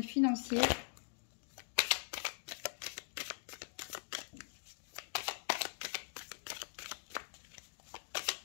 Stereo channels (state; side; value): silent; right; digital silence